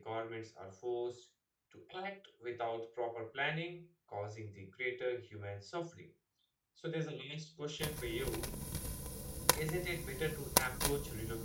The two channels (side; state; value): both; identical; correlation 1.00